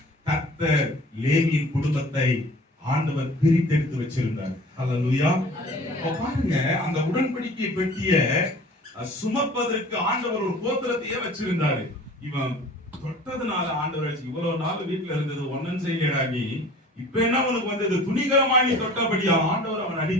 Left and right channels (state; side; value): normal; both; correlation 0.46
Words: கர்த்தர் லேவியின் குடும்பத்தை ஆண்டவர் பிரித்தெடுத்து வச்சிருந்தார். அல்லேலூயா. பாருங்க, அந்த உடன்படிக்கை பெட்டிய சுமப்பதற்கு ஆண்டவர் ஒரு கோத்திரத்தையே வச்சிருந்தாரு. இவன் தொட்டதுனால ஆண்டவர் இவ்வளவு நாள் வீட்டுல இருந்தது ஒன்னும் செய்யடா நீ, இப்ப என்ன உனக்கு வந்தது, துணிகரமாய் நீ தொட்டபடியா ஆண்டவர் அவன்